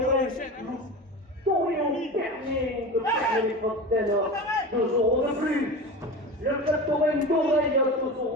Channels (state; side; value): normal; both; correlation 0.29